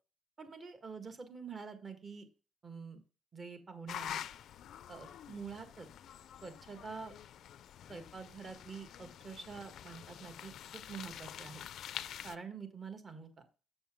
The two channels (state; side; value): normal; both; correlation 0.64